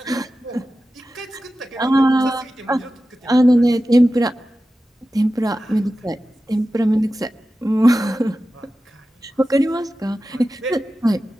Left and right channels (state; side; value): normal; both; correlation 0.94